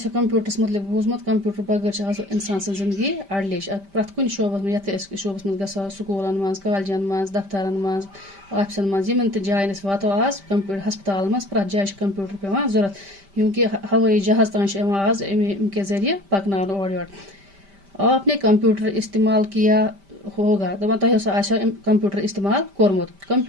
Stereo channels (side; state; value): left; late; 5.1 ms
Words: کمپیوٹرس متعلق بوٗزمُت کمپیوٹر بغٲر چھِ آز انسان سٕنٛز زندگی اڑلیش پرٛٮ۪تھ کُنہِ شوبس منٛز یتھ أسۍ شوبس منٛز گژھو سکوٗلن منٛز کالجن منٛز دفترن منٛز آفسن منٛز یِمن تہِ جاین أسۍ واتو آز ہسپتالن منٛز پرٛٮ۪تھ جایہِ چھِ کمپیوٹر پیوان ضوٚرتھ کیونکہِ ہوٲیی جہاز تام چھِ یِوان آز امہِ کہِ ذٔریعہٕ پکناونہٕ اورٕ یورٕ آپ نے کمپیوٹر استعمال کیا ہوگا دپان تۄہہِ اوسا آسیو کمپیوٹر استعمال کوٚرمُت